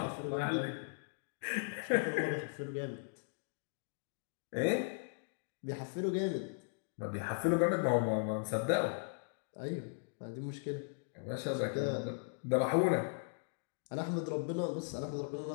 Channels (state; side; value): silent; right; digital silence